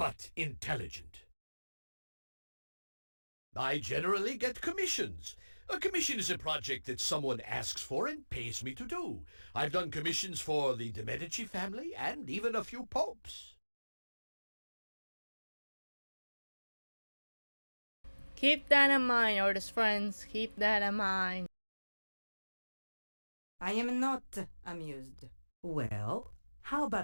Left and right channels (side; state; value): both; inverted; correlation -1.00